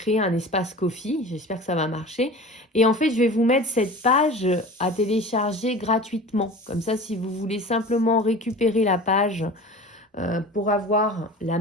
un espace Ko-fi, j'espère que ça va marcher. Et en fait, je vais vous mettre cette page à télécharger gratuitement. Comme ça, si vous voulez simplement récupérer la page pour avoir la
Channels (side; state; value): both; normal; correlation 0.37